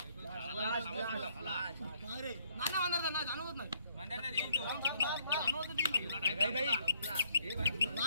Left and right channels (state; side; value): inverted; both; correlation -0.69